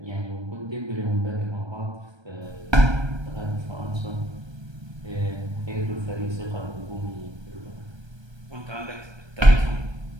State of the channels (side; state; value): left; late; 1.3 ms